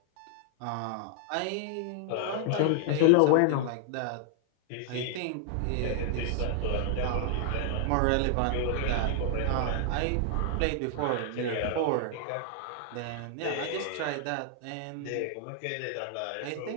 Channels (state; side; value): different; both; correlation 0.00